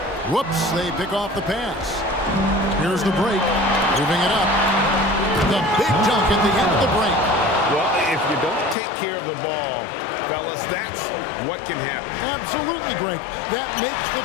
Whoops, they pick off the pass. Here's the break. Moving it up. The big dunk at the end of the break. Well, if you don't take care of the ball, fellas, that's what can happen. Absolutely, Greg. That makes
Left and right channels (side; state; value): right; drops out; at 8.8 s